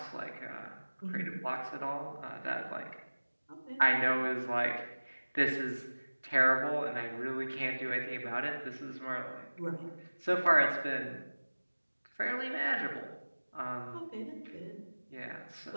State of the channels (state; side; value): inverted; both; correlation -1.00